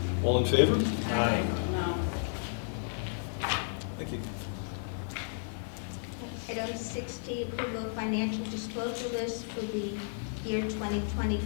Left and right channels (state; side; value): silent; right; 56 dB below the other